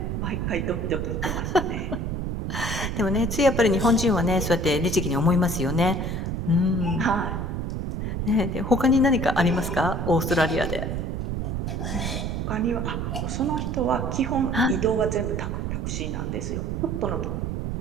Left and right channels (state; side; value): noise; right; rumble, 2 dB below the sound